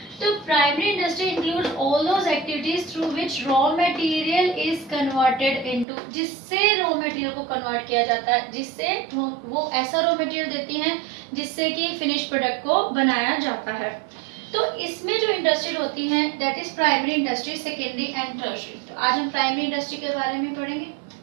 तो primary industry include all those activities through which raw material is converted into, जिससे रॉ मटेरियल को कन्वर्ट किया जाता है, जिससे वो ऐसा रॉ मटेरियल देती हैं जिससे कि फिनिश प्रोडक्ट को बनाया जाता है। तो इसमें जो इंडस्ट्री होती हैं, that is primary industry, secondary and tertiary. तो आज हम प्राइमरी इंडस्ट्री के बारे में पढ़ेंगे।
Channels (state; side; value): drops out; left; at 5.9 s